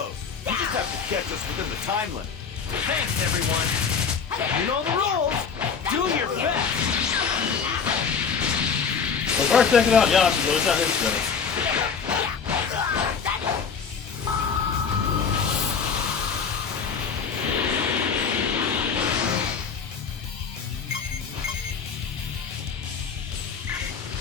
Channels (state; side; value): quieter; right; 6.2 dB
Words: You just have to catch us within the time limit. Thanks, everyone. You know the rules. Do your best. So first taking out Yamcha, but it's not his turn.